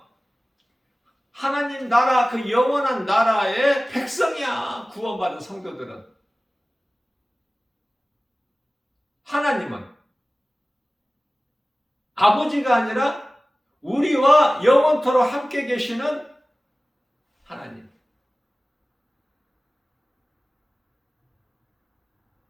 하나님 나라, 그 영원한 나라의 백성이야. 구원받은 성도들은. 하나님은 아버지가 아니라 우리와 영원토록 함께 계시는 하나님.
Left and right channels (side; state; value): both; normal; correlation 0.97